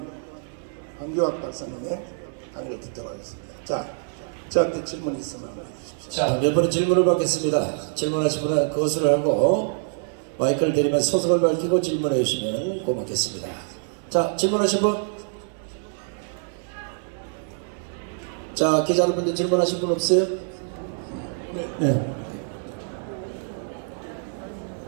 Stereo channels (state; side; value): silent; left; digital silence